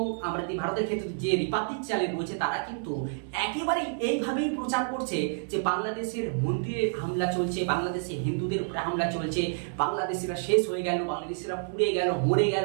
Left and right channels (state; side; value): silent; left; 59 dB below the other